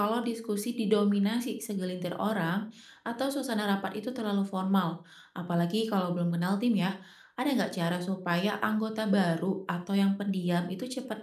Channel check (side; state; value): both; identical; correlation 1.00